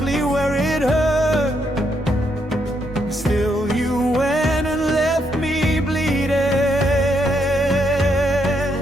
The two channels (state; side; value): normal; both; correlation 0.76